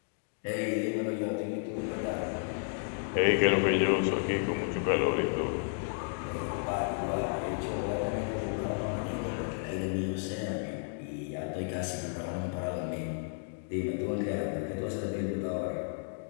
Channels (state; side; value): silent; right; digital silence